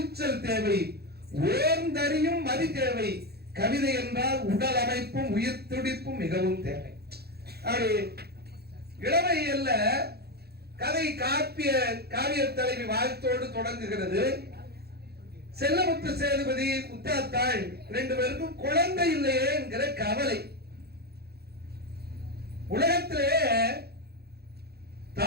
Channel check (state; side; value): late; left; 0.46 ms